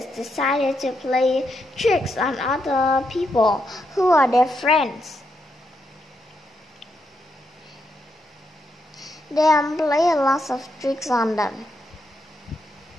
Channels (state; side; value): normal; both; correlation 0.81